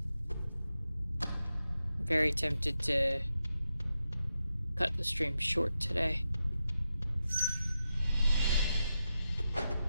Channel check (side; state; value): both; inverted; correlation -0.88